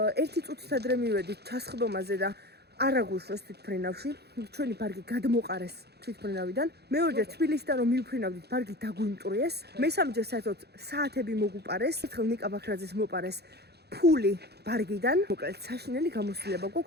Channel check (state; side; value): late; left; 0.48 ms